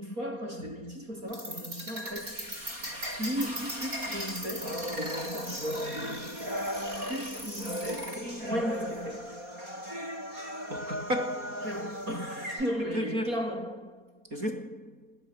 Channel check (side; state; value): left; late; 4.2 ms